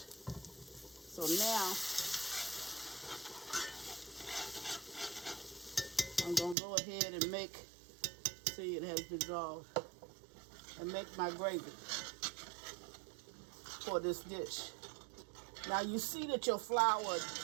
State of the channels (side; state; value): left; drops out; at 6.6 s